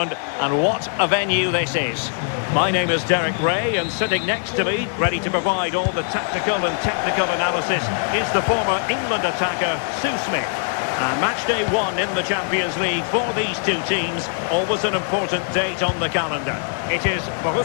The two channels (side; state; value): right; silent; 65 dB below the other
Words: and what a venue this is. My name is Derek Ray, and sitting next to me, ready to provide all the tactical and technical analysis, is the former England attacker, Sue Smith. And match day 1 in the Champions League for these two teams, always an important date on the calendar. It is